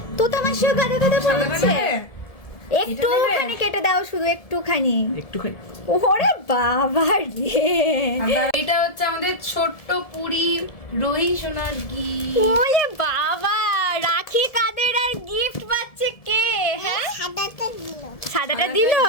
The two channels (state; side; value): late; right; 1.7 ms